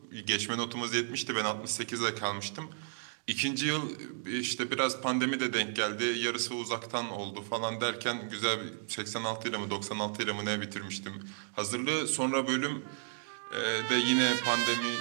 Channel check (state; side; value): silent; left; digital silence